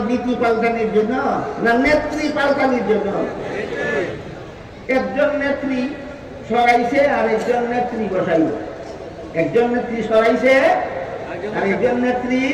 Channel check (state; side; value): identical; both; correlation 1.00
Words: নীতি পাল্টানির জন্য না নেত্রী পাল্টানির জন্য। একজন নেত্রী সরাইছে আর একজন নেত্রী বসাইব, একজন নেত্রী সরাইছে আর একজন নেত্রী